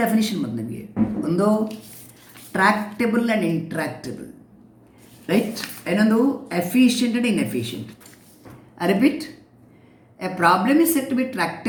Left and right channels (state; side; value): identical; both; correlation 1.00